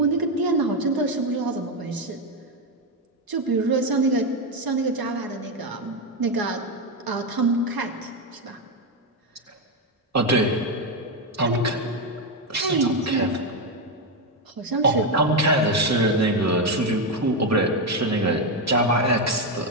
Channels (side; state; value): both; normal; correlation 0.07